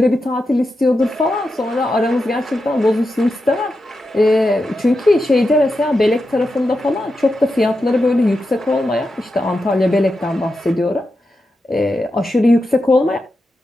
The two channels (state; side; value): normal; both; correlation 0.88